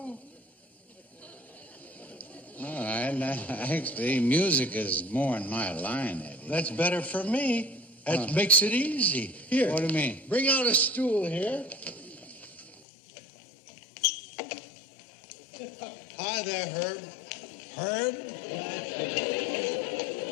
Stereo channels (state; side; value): drops out; right; at 12.8 s